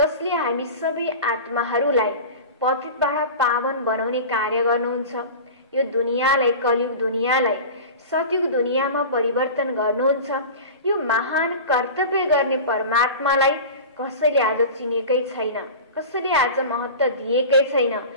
हामी सबै आत्माहरूलाई पतितबाट पावन बनाउने कार्य गर्नुहुन्छ। यो दुनियाँलाई, कलियुग दुनियाँलाई सतयुग दुनियाँमा परिवर्तन गर्नुहुन्छ। यो महान कर्तव्य गर्ने परमात्मालाई कसैले आज चिनेकै छैन, कसैले आज महत्त्व दिएकै छैन।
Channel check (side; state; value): both; inverted; correlation -0.33